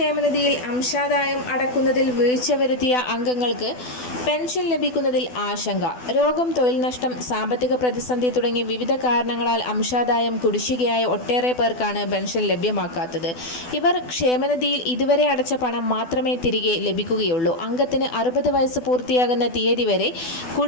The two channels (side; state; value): right; late; 12 ms